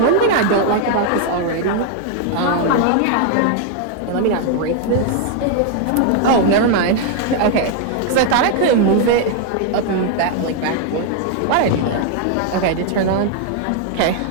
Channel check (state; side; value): different; both; correlation 0.00